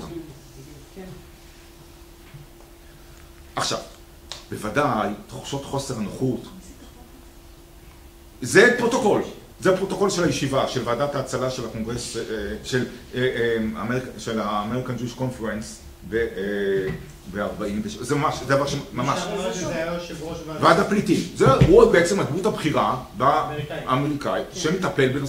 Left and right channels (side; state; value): both; identical; correlation 1.00